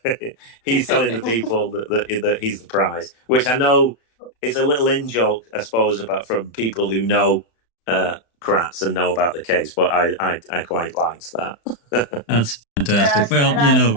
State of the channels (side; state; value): right; late; 35 ms